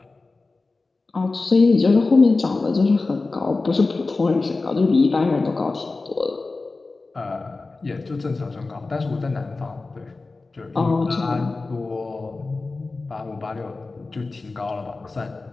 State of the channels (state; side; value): quieter; right; 3.6 dB